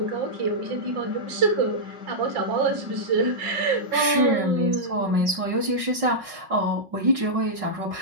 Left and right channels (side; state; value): left; late; 5.4 ms